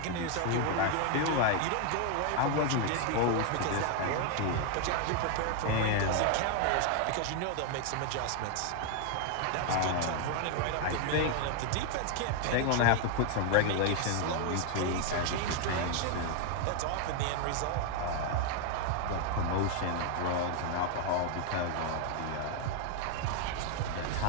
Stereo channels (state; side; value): different; both; correlation 0.01